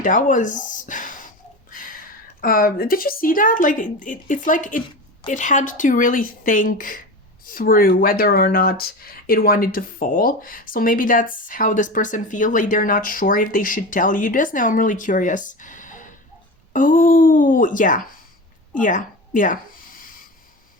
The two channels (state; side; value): normal; both; correlation 0.27